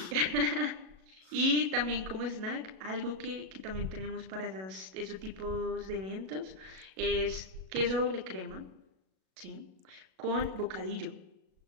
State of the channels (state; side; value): late; left; 37 ms